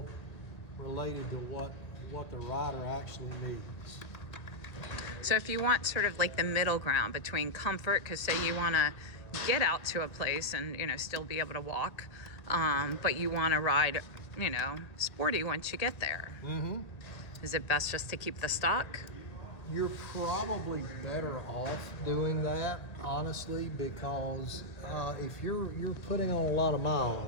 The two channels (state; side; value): late; right; 1.9 ms